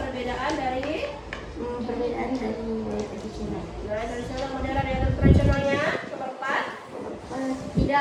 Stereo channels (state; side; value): identical; both; correlation 1.00